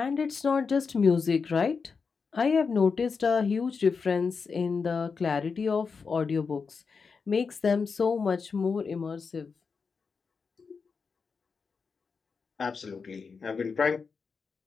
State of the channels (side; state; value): right; quieter; 5.2 dB